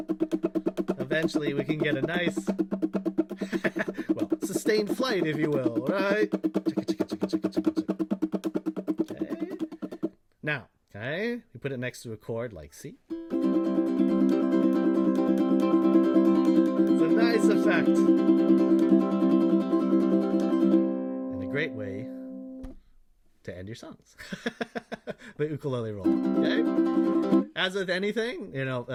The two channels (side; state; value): both; identical; correlation 1.00